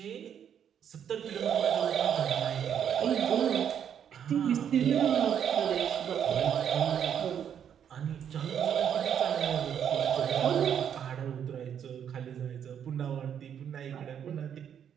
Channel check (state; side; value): quieter; left; 8.7 dB